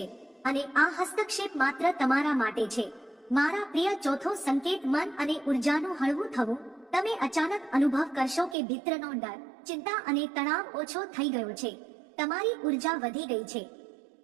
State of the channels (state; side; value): drops out; left; at 8.6 s